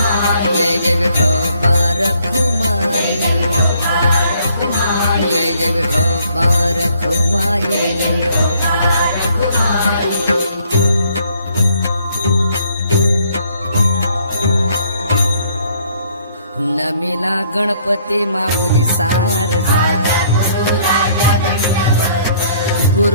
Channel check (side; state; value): both; inverted; correlation -0.64